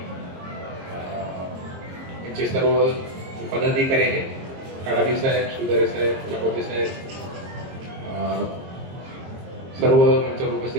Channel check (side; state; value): left; late; 22 ms